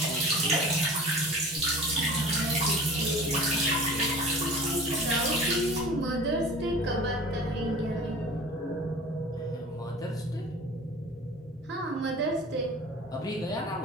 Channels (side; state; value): both; normal; correlation 0.41